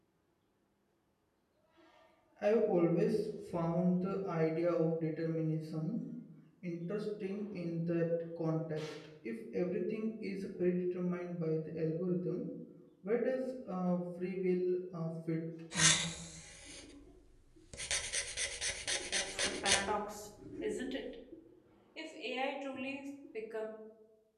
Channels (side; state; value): both; identical; correlation 1.00